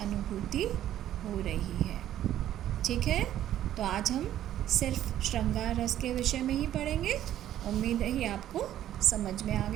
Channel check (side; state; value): left; quieter; 12.0 dB